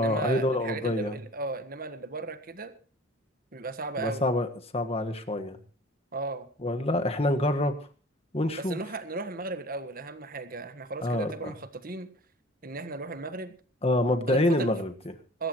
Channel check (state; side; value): normal; both; correlation 0.46